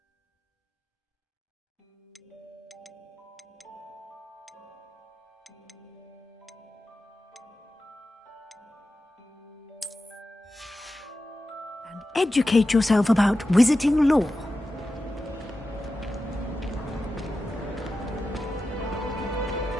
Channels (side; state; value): both; normal; correlation 0.92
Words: And educate yourself about wizarding lore.